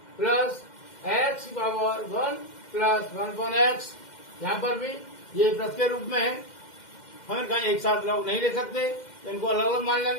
प्लस x की पावर 1 प्लस 1/x, यहाँ पर भी ये प्लस के रूप में है, हम कहीं एक साथ लोग नहीं ले सकते, तो इनको अलग अलग मान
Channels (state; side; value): late; right; 2.1 ms